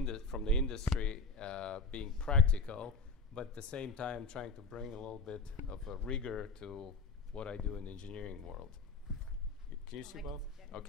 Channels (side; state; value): right; quieter; 3.7 dB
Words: industry, being practical, but at the same time trying to bring a little bit of a rigor to what I do in the engineering world. Can you see both?